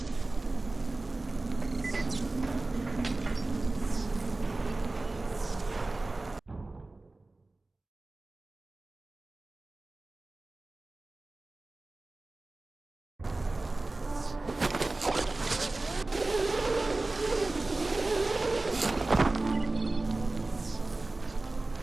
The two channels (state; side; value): quieter; left; 3.1 dB